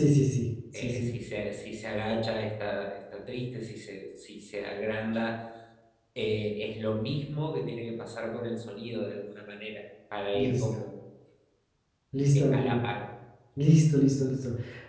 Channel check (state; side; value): identical; both; correlation 1.00